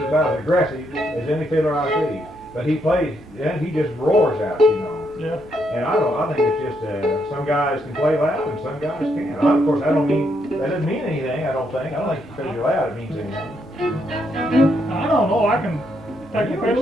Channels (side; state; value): both; normal; correlation 0.76